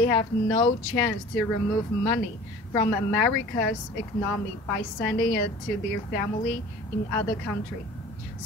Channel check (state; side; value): normal; both; correlation 0.43